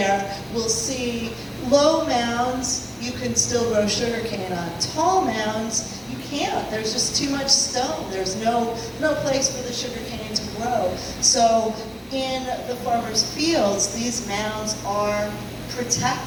we'll see low mounds. You can still grow sugar cane on. Tall mounds, you can't. There's just too much stone. There's no place for the sugar cane to grow. So in the farmers' fields, these mounds are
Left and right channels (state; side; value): identical; both; correlation 1.00